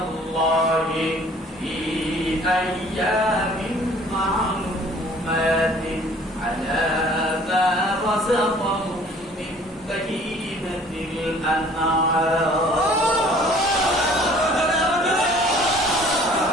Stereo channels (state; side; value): normal; both; correlation 0.53